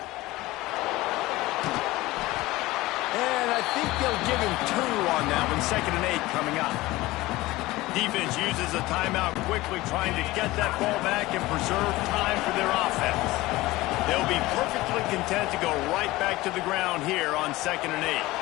And I think they'll give him 2 on that one, 2nd and 8 coming up. Defense uses a timeout quickly, trying to get that ball back and preserve time for their offense. They'll be perfectly content to go right back to the ground here on 2nd and 8.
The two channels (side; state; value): right; quieter; 19.0 dB